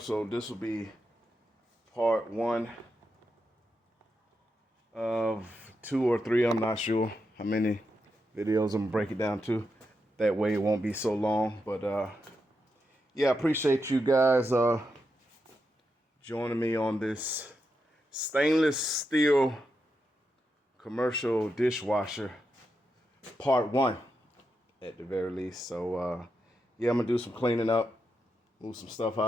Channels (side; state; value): both; normal; correlation 0.85